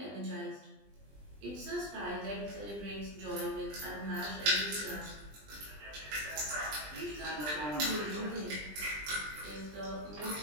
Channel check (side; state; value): left; late; 20 ms